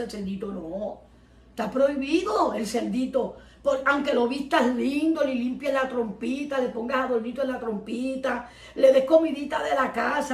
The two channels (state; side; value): identical; both; correlation 1.00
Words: cerdito. No, está prohibido el cerdito. Aunque lo vistas lindo, le limpies la trompita, le pongas adornito en la trompita, le des comidita de la